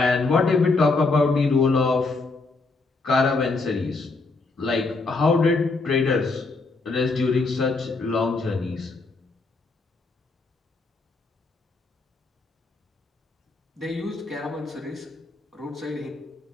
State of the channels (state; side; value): quieter; right; 3.7 dB